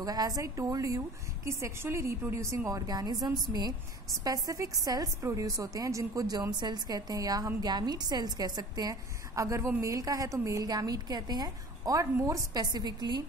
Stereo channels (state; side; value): normal; both; correlation 0.42